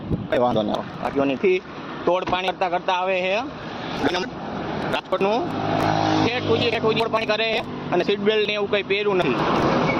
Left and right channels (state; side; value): identical; both; correlation 1.00